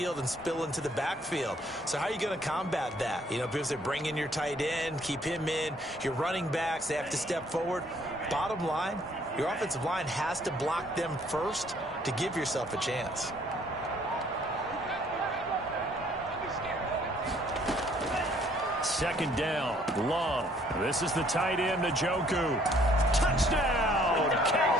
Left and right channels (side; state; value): both; normal; correlation 0.62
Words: and spill into the backfield. So how are you going to combat that? You know, because they bring in your tight end, keep him in. Your running backs, they have to step forward. Bottom line, your offensive line has to block them first to give yourself a chance. Second down, Love. This is the tight end, Njoku. Touchdown,